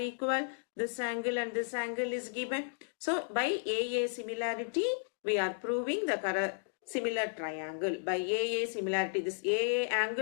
This angle and this angle is given. So by AA similarity we are proving the similar triangle. By AA similarity, this AA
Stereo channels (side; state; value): right; silent; digital silence